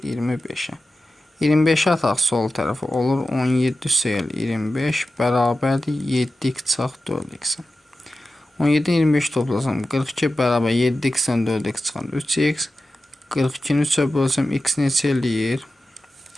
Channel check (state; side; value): normal; both; correlation 0.93